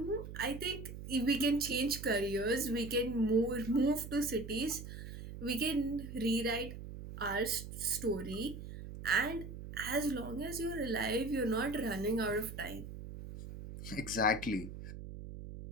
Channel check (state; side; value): noise; right; hum, 10 dB below the sound